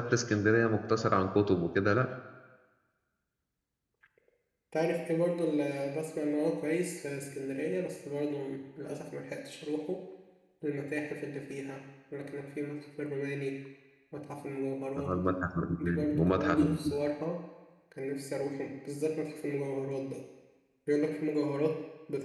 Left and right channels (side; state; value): both; identical; correlation 1.00